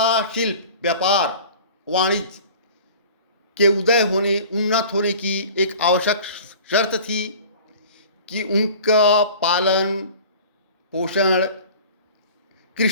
शिल्प, व्यापार, वाणिज्य के उन्नत होने की एक आवश्यक शर्त थी कि उनका पालन पोषण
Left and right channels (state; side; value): inverted; both; correlation -0.42